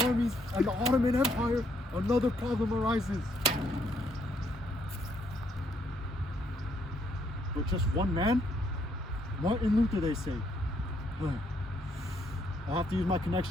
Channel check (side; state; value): both; normal; correlation 0.71